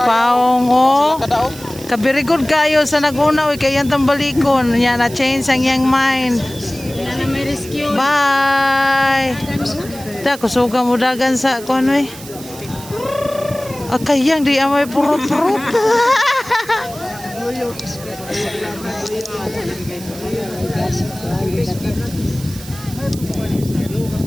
oh. kadaog. Kabirigod kayo sa naguna, oy. Kaya yung balikon. Yan, na-change ang iyang mind. Wala na may rescue. Bye! Da, kusuga mo dagan sa kung ano eh. Kayang di amay purot-purot.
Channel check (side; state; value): right; noise; hiss, 16 dB below the sound